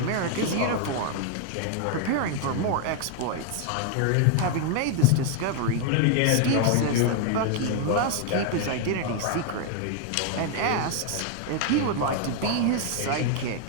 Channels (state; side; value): different; both; correlation 0.00